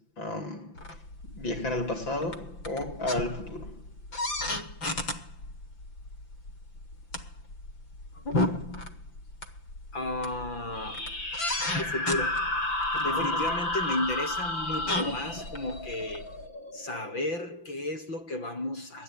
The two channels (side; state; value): right; late; 5.9 ms